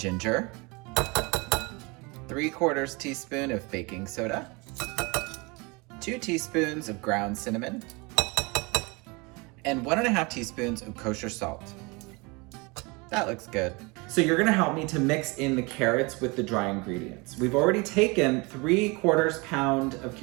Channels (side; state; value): left; quieter; 27.3 dB